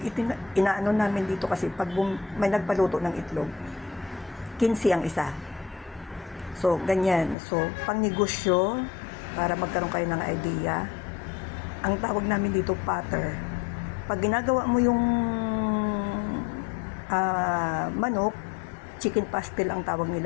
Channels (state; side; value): drops out; right; at 7.4 s